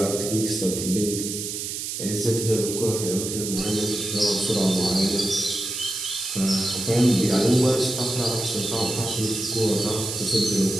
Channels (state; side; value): noise; right; hiss, 5 dB below the sound